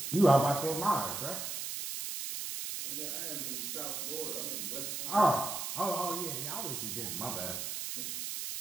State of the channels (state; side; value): noise; right; hiss, 4 dB below the sound